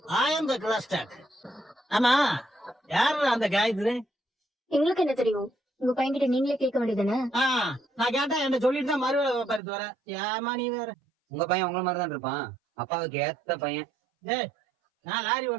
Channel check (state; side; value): drops out; left; at 9.6 s